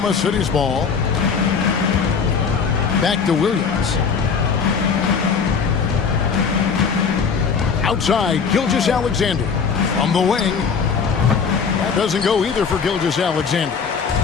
City's ball. Back to Williams. Outside, Gilgeous-Alexander. From the wing. That doesn't go either for Gilgeous-Alexander.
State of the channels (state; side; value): quieter; right; 5.9 dB